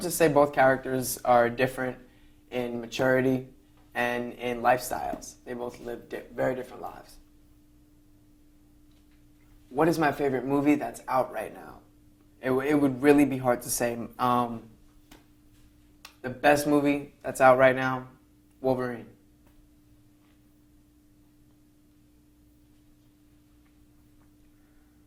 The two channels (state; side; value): identical; both; correlation 1.00